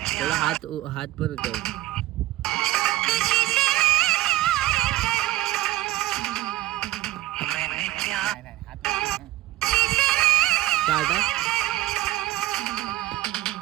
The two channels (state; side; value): quieter; left; 15.9 dB